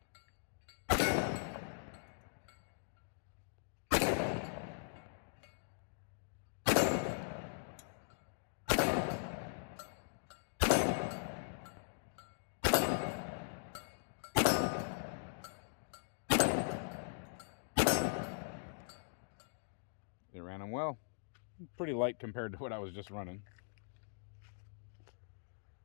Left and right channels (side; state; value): right; silent; digital silence